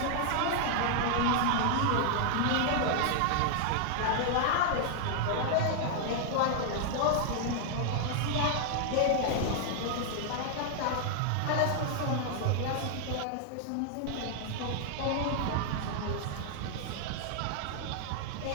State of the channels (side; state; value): both; different; correlation 0.00